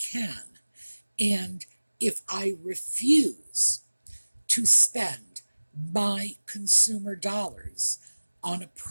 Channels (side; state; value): both; inverted; correlation -1.00